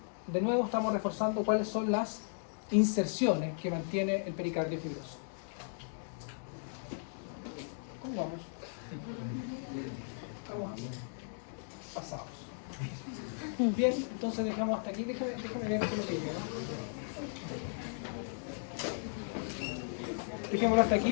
de nuevo estamos reforzando cuáles son las inserciones que mantiene el pericardio fibroso. ¿Cómo vamos? Vamos pasados. Bien, entonces dejamos hasta aquí. Déjame ver qué es lo que digo, ¿no? Dejémoslo hasta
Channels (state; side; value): silent; right; digital silence